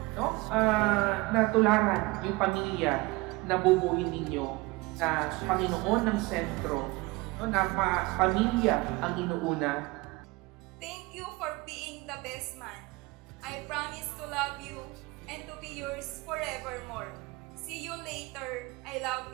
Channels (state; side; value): quieter; left; 23.1 dB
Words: No? Na tularan yung pamilya na bubuhin ninyo na Panginoon ng sentro. No? Na pamilya ang inuuna. Thank you for being the best man. I promise to love you and to be yours forevermore. See you later. I love